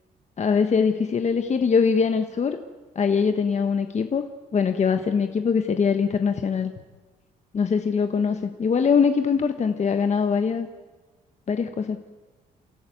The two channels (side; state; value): right; quieter; 5.6 dB